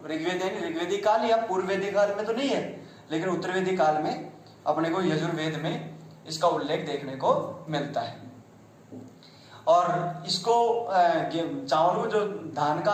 ऋग्वेद है ऋग्वेदिक काल या पूर्व वैदिक काल में तो नहीं है, लेकिन उत्तर वैदिक काल में अपने को यजुर्वेद में इसका उल्लेख देखने को मिलता है। और इसको चावल को जो धान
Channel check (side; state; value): both; identical; correlation 1.00